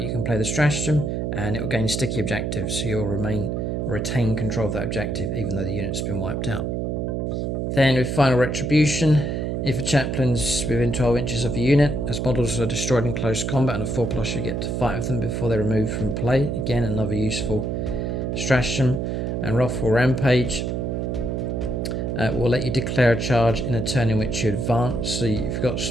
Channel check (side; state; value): right; noise; hum, 1 dB below the sound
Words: can play the stratagem and it will gain sticky objectives, so you'll retain control of that objective even though the unit's been wiped out. Then with Final Retribution, if a chaplain's within 12 inches of the unit, as models are destroyed in close combat and a 4+, you get to fight with them before they're removed from play. Again, another useful stratagem. And Wrathful Rampage will let you declare a charge in a turn in which you advance, so you've got